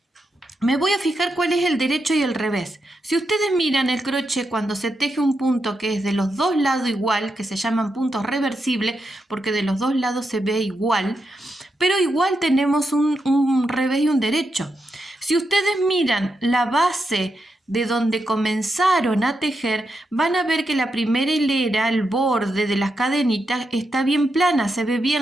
Me voy a fijar cuál es el derecho y el revés. Si ustedes miran el crochet cuando se teje un punto que es de los dos lados igual, que se llaman puntos reversibles, porque de los dos lados se ve igual, pero igual tenemos un revés y un derecho. Si ustedes miran la base de donde comenzaron a tejer, van a ver que la primera hilera, el borde de las cadenitas, está bien plana, se ve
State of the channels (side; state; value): both; normal; correlation 0.85